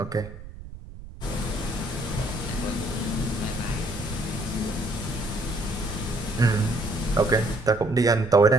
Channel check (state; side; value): noise; right; rumble, 15 dB below the sound